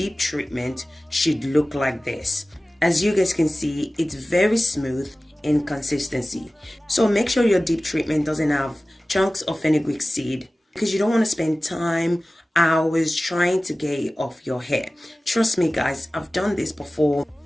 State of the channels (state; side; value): normal; both; correlation 0.97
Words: treatment should look like this. As you guys can see, it's very smooth in consistency. So make sure your deep treatment doesn't have chunks of fenugreek seed, because you don't want to spend time, hours trying to get it off your hair. Trust me guys, I've done this before